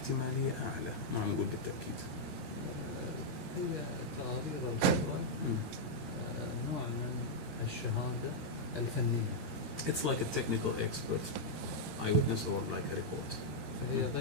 أعلى ما نقول بالتأكيد. هي تقارير الخبرة نوع من الشهادة الفنية. It's like a technical expert eyewitness or like a report. فهي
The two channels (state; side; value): late; left; 13 ms